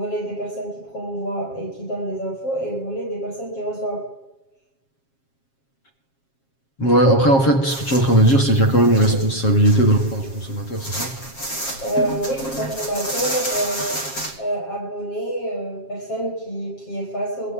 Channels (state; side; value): late; right; 7.4 ms